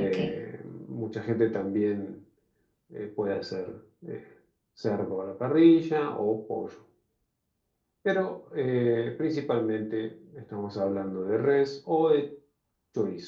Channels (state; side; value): identical; both; correlation 1.00